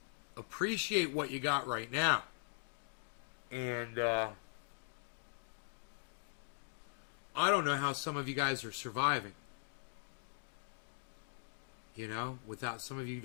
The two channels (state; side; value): silent; right; digital silence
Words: appreciate what you got right now. And, I don't know how some of you guys are surviving. You know, without some of you